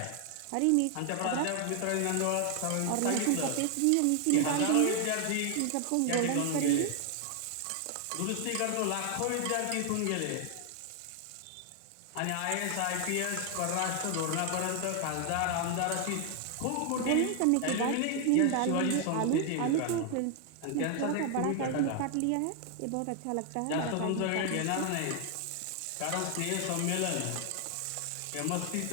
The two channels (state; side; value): different; both; correlation 0.00